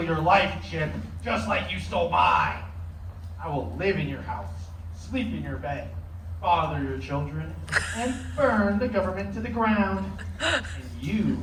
your life, Chip, just like you stole mine. I will live in your house, sleep in your bed, father your children, and burn the government to the ground. And you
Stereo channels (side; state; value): both; identical; correlation 1.00